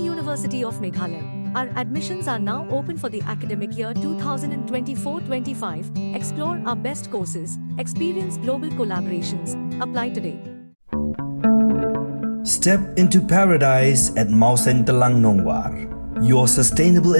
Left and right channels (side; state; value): both; inverted; correlation -1.00